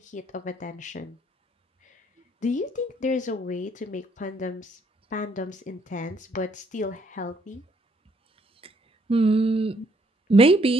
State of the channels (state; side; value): normal; both; correlation 0.68